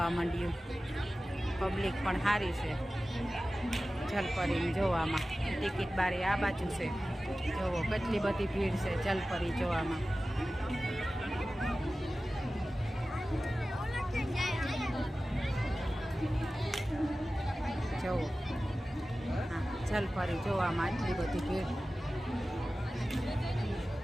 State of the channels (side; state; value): both; normal; correlation 0.95